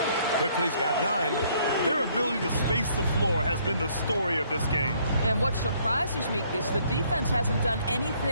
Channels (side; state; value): both; inverted; correlation -0.65